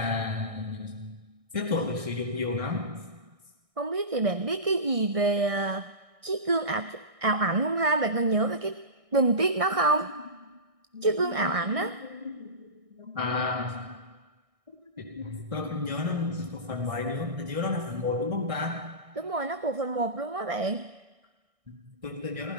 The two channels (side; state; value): left; late; 1.6 ms